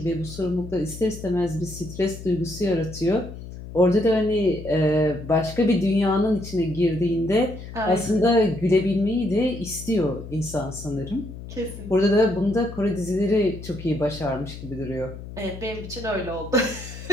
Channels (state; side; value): noise; left; hum, 12 dB below the sound